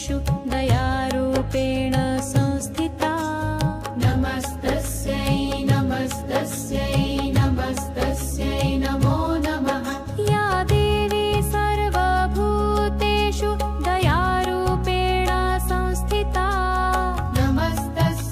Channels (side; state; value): both; identical; correlation 1.00